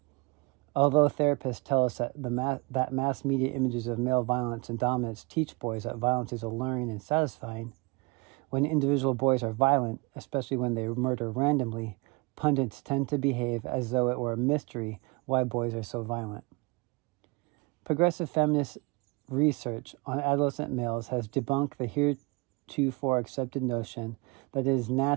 Although therapists tell us that mass media images of male violence and dominance teach boys that violence is alluring and satisfying, when individual boys are violent, especially when they murder randomly, pundits tend to behave as though it were a mystery why boys are so violent. Progressive feminist research on adolescent males has debunked the heretofore accepted notion that it is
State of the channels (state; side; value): quieter; left; 28.1 dB